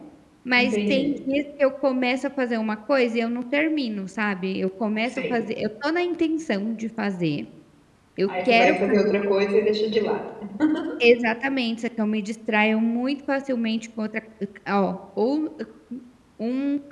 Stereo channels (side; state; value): both; identical; correlation 1.00